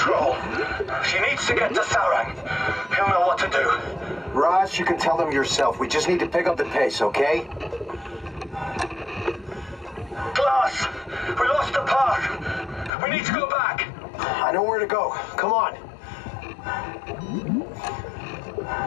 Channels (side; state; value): right; drops out; at 12.9 s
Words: She needs to get to Sarang. He'll know what to do. Ross, you can tell them yourself. We just need to pick up the pace, okay? Glass! We lost the path! We need to go back! I know where to go. Come on.